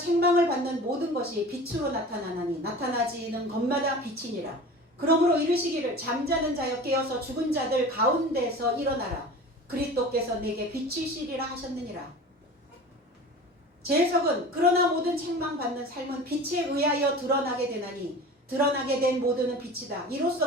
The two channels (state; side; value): normal; both; correlation 0.36